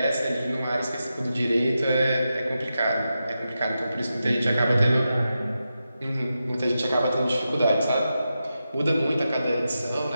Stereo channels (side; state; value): both; inverted; correlation -0.89